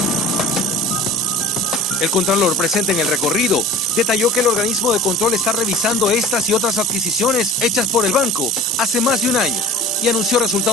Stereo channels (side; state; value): both; normal; correlation 0.43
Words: El Contralor, presente en el recorrido, detalló que el organismo de control está revisando estas y otras adquisiciones hechas por el banco hace más de un año y anunció